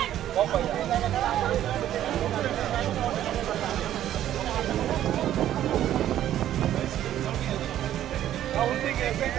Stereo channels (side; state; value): left; quieter; 12.0 dB